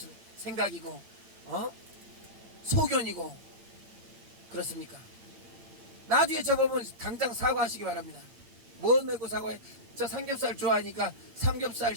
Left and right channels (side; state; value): left; late; 8.9 ms